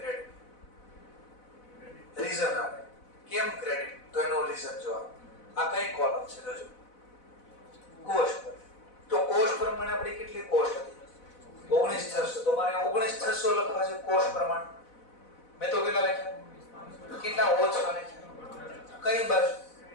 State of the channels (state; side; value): late; right; 4.0 ms